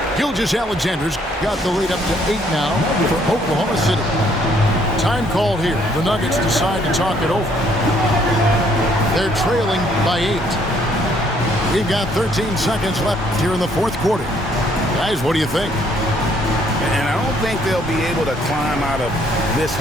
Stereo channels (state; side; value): normal; both; correlation 0.66